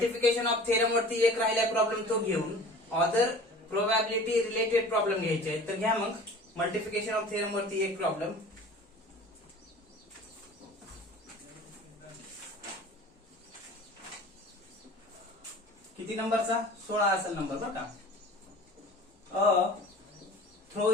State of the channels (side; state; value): both; normal; correlation 0.43